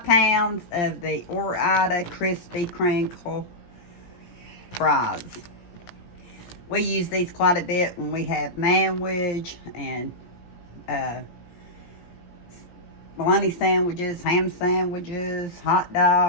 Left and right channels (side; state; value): right; late; 17 ms